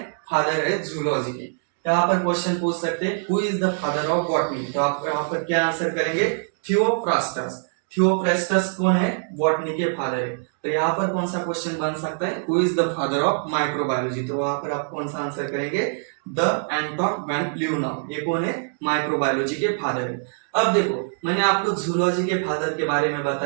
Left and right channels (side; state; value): left; silent; digital silence